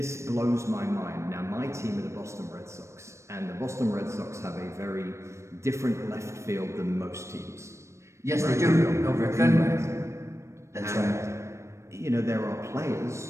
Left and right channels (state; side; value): late; left; 0.14 ms